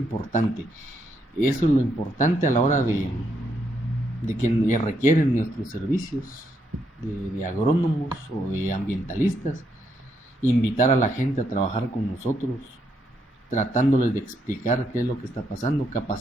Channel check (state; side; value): normal; both; correlation 0.77